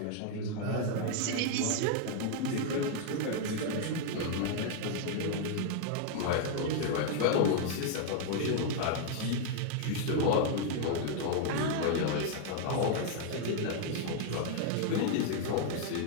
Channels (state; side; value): different; both; correlation 0.00